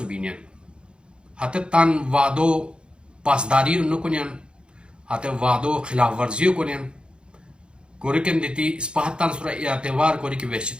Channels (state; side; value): late; left; 0.053 ms